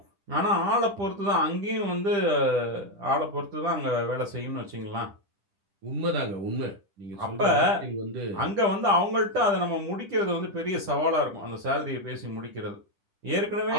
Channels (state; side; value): late; left; 10 ms